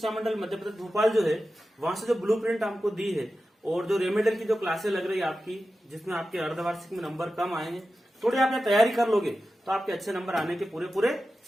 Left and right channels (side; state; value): both; normal; correlation 0.92